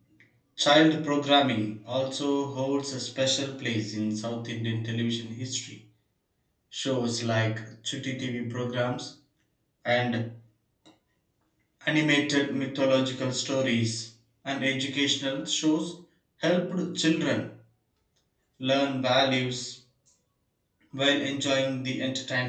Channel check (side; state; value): both; identical; correlation 1.00